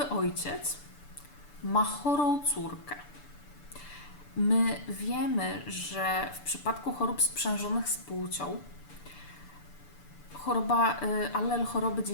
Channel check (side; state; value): right; late; 6.9 ms